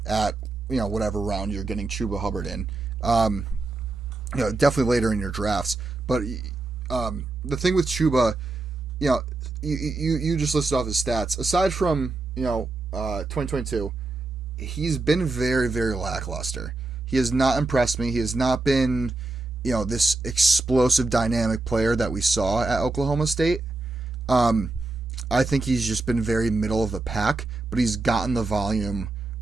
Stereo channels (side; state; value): left; quieter; 3.3 dB